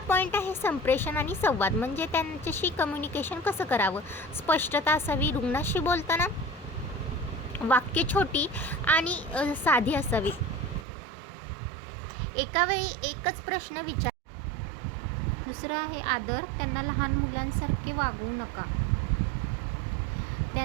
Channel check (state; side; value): drops out; left; at 10.9 s